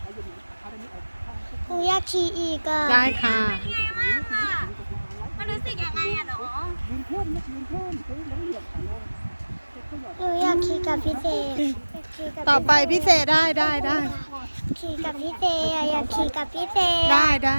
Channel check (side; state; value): both; inverted; correlation -1.00